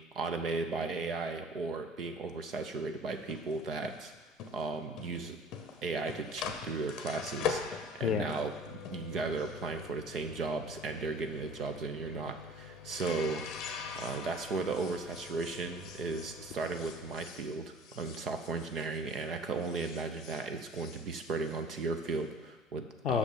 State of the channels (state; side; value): normal; both; correlation 0.45